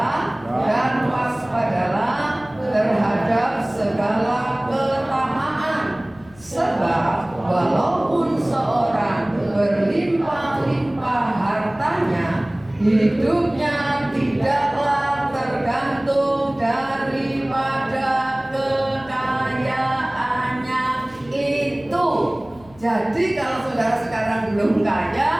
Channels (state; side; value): noise; left; hum, 24 dB below the sound